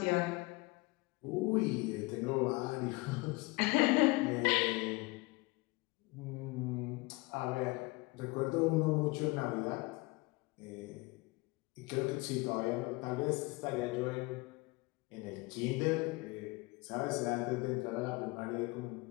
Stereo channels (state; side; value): quieter; right; 23.9 dB